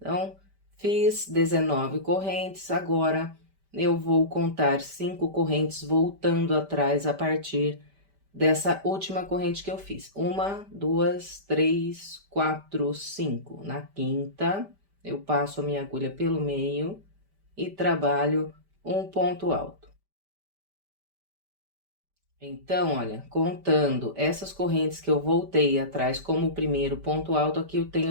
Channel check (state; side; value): late; left; 5.1 ms